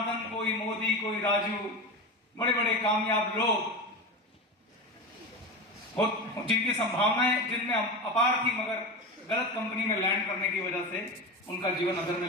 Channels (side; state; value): both; normal; correlation 0.24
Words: कोई मोदी, कोई राजू, बड़े बड़े कामयाब लोग जिनकी संभावनाएं जिनमें अपार थी, मगर गलत कंपनी में लैंड करने की वजह से उनका जीवन अधर में